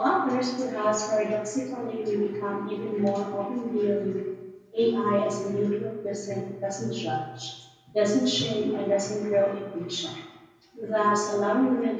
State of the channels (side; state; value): both; identical; correlation 1.00